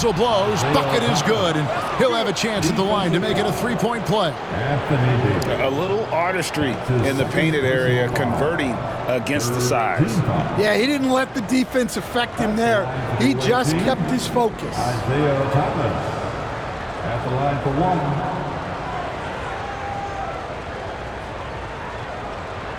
blows. Bucket is good. And he'll have a chance at the line to make it a three-point play. A little artistry in the painted area, converting against the size. Yeah, he didn't let the defense affect him there. He just kept his focus. Isaiah Thomas at the line for 1.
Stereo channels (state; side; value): identical; both; correlation 1.00